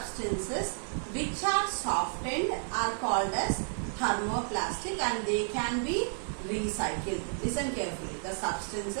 which are softened are called as thermoplastic and they can be recycled. Listen carefully. The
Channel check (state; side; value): silent; left; 57 dB below the other